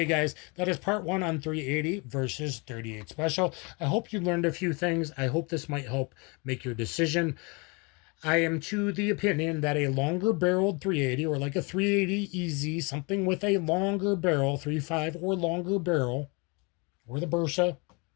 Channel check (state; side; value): quieter; right; 30.0 dB